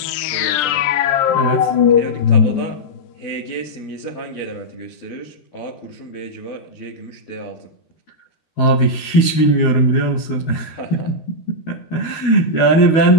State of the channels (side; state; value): right; late; 12 ms